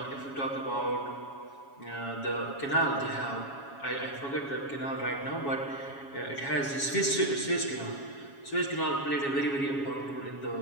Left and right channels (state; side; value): late; right; 7.2 ms